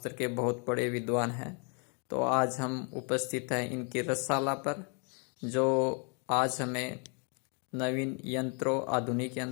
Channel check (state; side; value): quieter; right; 37.7 dB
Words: के बहुत बड़े विद्वान हैं। तो आज हम उपस्थित हैं इनकी रसशाला पर, जो आज हमें नवीन यंत्रों, आधुनिक